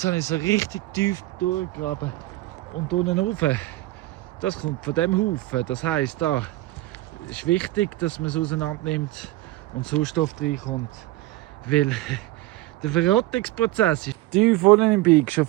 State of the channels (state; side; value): quieter; left; 17.5 dB